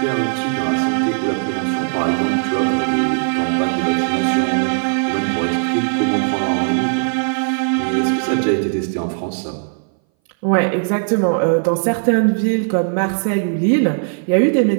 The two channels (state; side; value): silent; left; 62 dB below the other